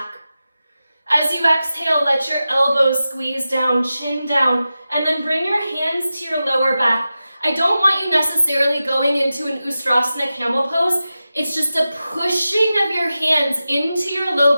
As you exhale, let your elbows squeeze down, chin down, and then bring your hands to your lower back. I don't want you necessarily going into an Ustrasana camel pose. It's just a pushing of your hands into your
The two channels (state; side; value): inverted; both; correlation -0.93